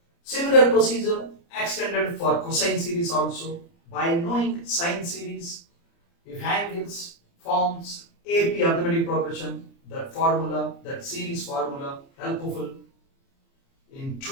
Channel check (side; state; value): right; late; 29 ms